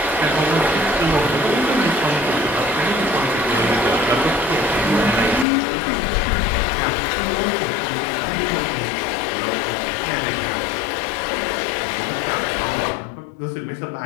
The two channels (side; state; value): right; drops out; at 5.5 s